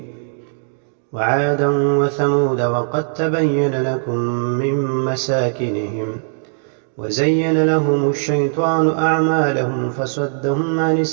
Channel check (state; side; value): silent; left; digital silence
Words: وعادا وثمود وقد تبين لكم من مساكنهم وزين لهم الشيطان أعمالهم فصدهم عن